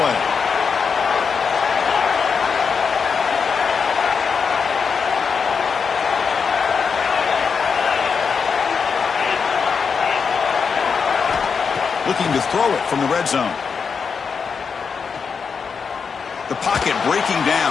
Looking to throw it from the red zone. The pocket breaking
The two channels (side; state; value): right; quieter; 5.8 dB